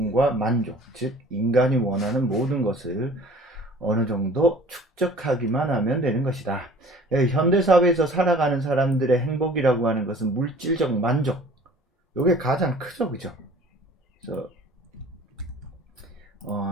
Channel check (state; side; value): normal; both; correlation 0.48